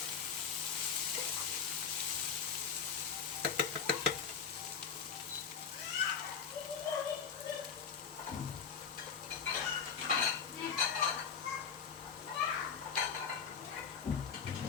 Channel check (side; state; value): right; quieter; 6.6 dB